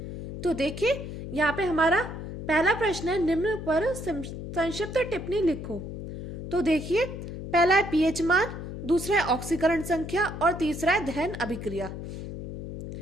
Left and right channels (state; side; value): noise; left; hum, 8 dB below the sound